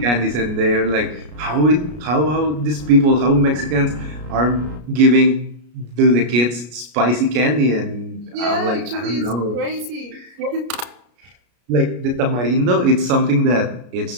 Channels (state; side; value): late; left; 33 ms